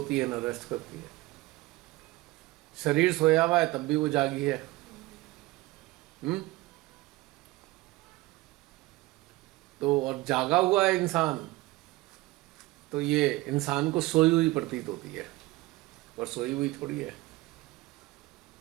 है ना रेस्ट करती है। शरीर सोया हुआ है तब भी वो जागी है। तो और जागा हुआ है इंसान, तो ये इंसान को सोई हुई प्रतीत होती है, और सोई हुई थोड़ी है।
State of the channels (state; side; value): quieter; left; 20.0 dB